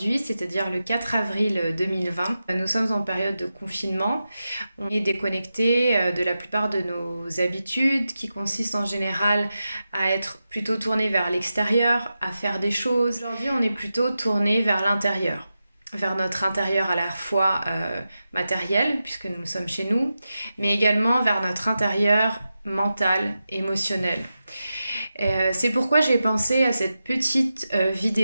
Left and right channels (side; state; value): both; inverted; correlation -0.90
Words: c'est-à-dire le 4 avril 2020, nous sommes en période de confinement. On est déconnecté de la plupart de nos habitudes qui consistent en général à être plutôt tourné vers l'extérieur, à faire des choses. Aujourd'hui, on est plutôt tourné vers l'intérieur, vers notre intérieur à la fois matériel, puisque nous sommes chez nous, mais également vers notre intérieur mental, émotionnel. C'est pourquoi j'ai pensé à cette petite